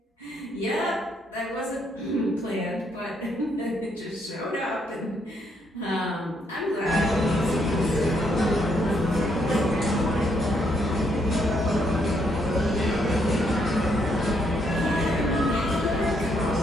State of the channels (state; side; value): normal; both; correlation 0.73